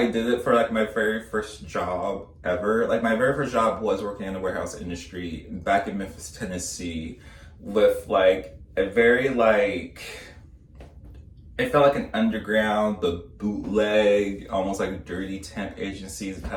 did it for like my very first job ever. Like my very first job was working in the warehouse industry back in Memphis, Tennessee, with like a very like, it felt like an underground, the bootleg, almost like a dirty temp agencies type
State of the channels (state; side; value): identical; both; correlation 1.00